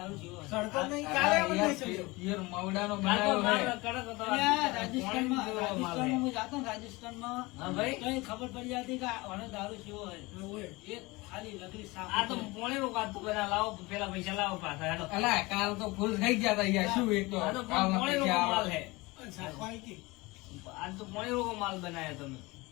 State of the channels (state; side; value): quieter; right; 23.0 dB